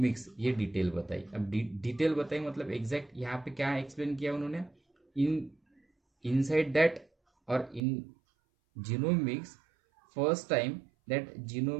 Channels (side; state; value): left; drops out; at 7.8 s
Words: ये डिटेल बताई। अब डिटेल बताई मतलब एग्जैक्ट यहाँ पे क्या एक्सप्लेन किया उन्होंने? इनसाइड दैट और in genomics first time that